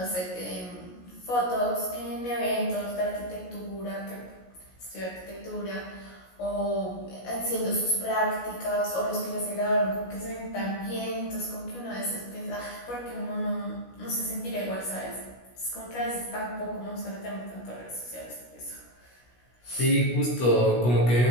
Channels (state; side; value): late; right; 16 ms